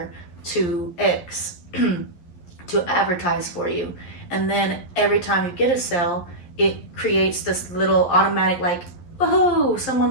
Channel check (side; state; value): right; late; 11 ms